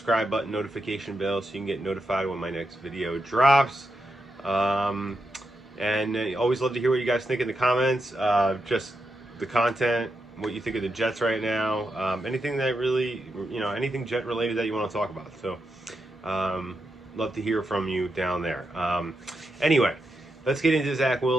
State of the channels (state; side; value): normal; both; correlation 0.86